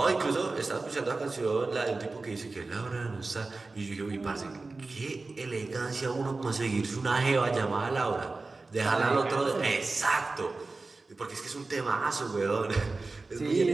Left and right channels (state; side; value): quieter; left; 3.6 dB